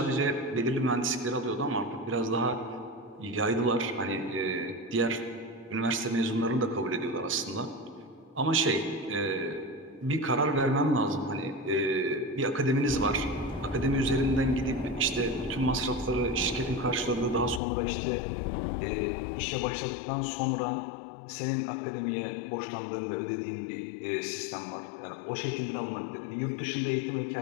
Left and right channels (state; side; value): drops out; right; at 17.6 s